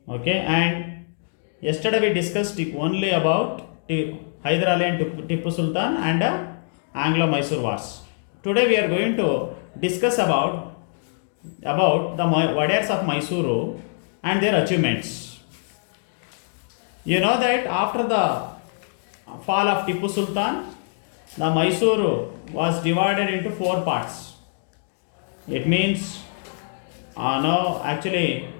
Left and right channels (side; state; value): right; silent; digital silence